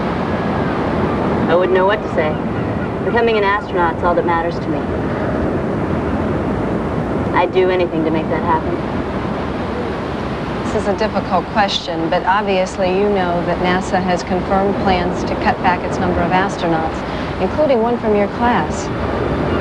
I wouldn't know what to say. Becoming an astronaut's all that matters to me. I'd do anything to make that happen. This is a difficult question, but obviously you know that NASA has confirmed plans to cut back its number of astronauts, including one from your class.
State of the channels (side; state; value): both; identical; correlation 1.00